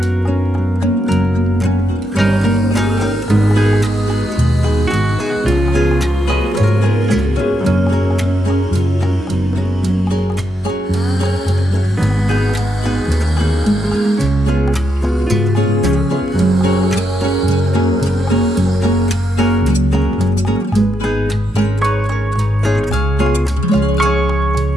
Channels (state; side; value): normal; both; correlation 0.82